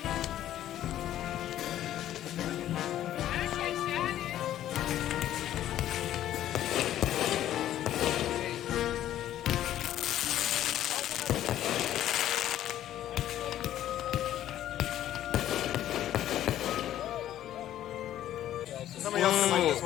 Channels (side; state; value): right; quieter; 12.3 dB